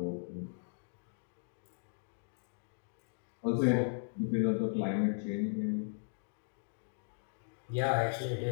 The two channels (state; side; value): silent; right; digital silence